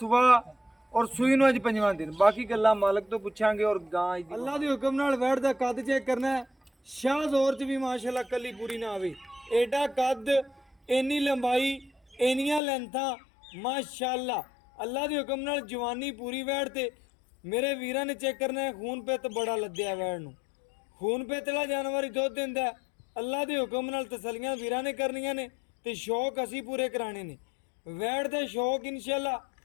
और सूई नूं अज पंजवां दिन। बाकी गल्लां मालक तो पुछांगे और गां अल्लाह दे हुक्म नाल वैड़ दा कद चेक करना है। शाह जोर च भी माशाल्लाह कली पूरी ना आवे, एडा कद, इन्नी लंबाई, इन्नियां लेंथां माशाल्लाह। अल्लाह दे हुक्म नाल जवानी पूरी वैड़ ते मेरे वीरां ने चेक करना है। खून पित बड़ा लद्या वैड़ नूं, खून पित वाला जानवर ही दुध दिंदा है। अल्लाह दे हुक्म नाल तसलियां वीरां ने करनियां ने ते शौक असीं पूरे कराने ने। वैड़ दे शौक इंशाल्लाह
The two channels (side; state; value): right; drops out; at 12.6 s